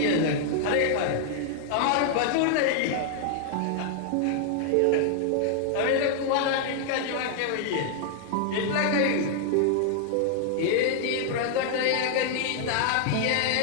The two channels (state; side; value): different; both; correlation 0.00